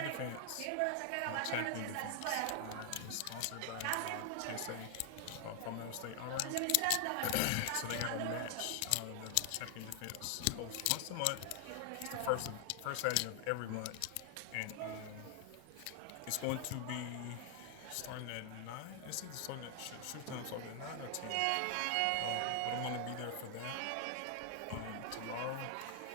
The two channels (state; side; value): different; both; correlation 0.00